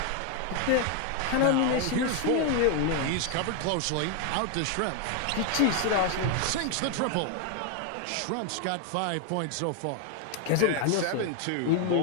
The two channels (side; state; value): both; different; correlation 0.01